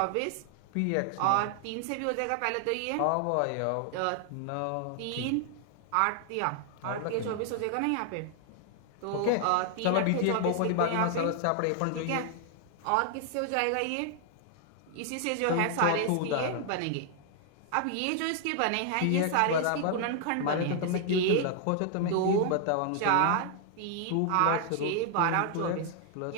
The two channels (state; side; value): different; both; correlation 0.00